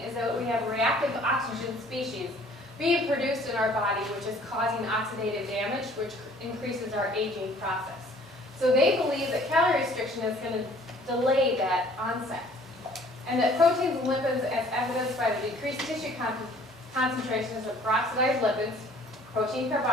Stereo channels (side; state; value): both; normal; correlation 0.55